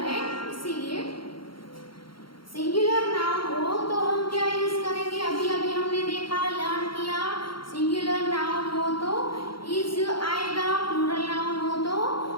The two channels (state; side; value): late; right; 0.73 ms